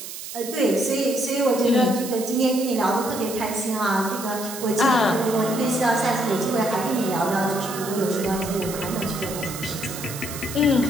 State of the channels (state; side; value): noise; right; hiss, 10 dB below the sound